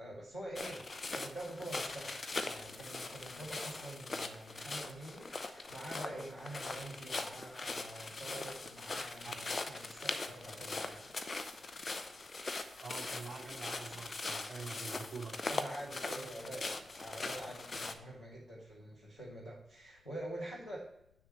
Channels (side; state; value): left; noise; rumble, 28 dB below the sound